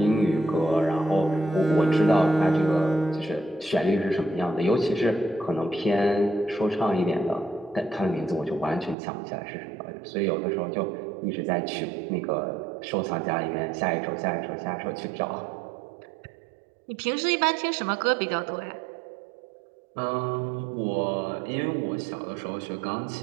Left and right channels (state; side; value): drops out; left; at 9.0 s